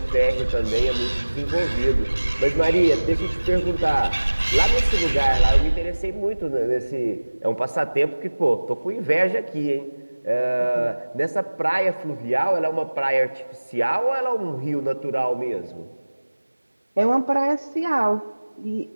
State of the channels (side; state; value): both; inverted; correlation -1.00